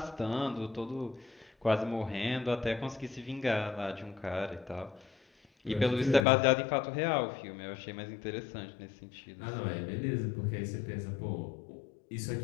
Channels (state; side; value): drops out; right; at 6.2 s